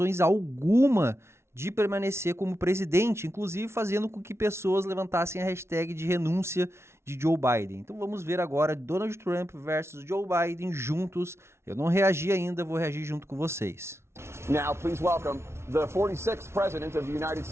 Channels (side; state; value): left; late; 0.13 ms